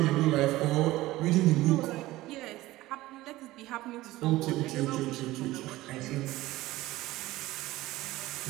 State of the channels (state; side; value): quieter; left; 17.5 dB